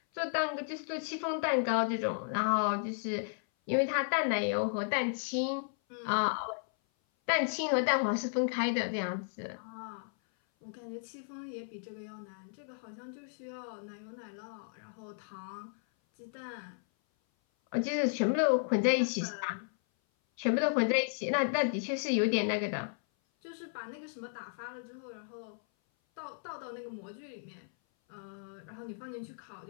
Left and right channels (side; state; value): right; silent; 55 dB below the other